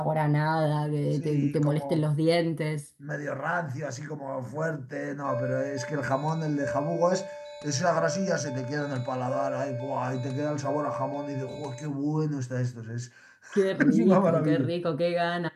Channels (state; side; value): identical; both; correlation 1.00